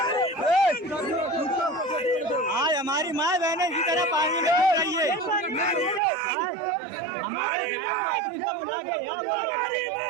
आज हमारी माँ बहने इसी तरह पानी में रही है। हमारे बुला के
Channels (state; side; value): drops out; left; at 6.0 s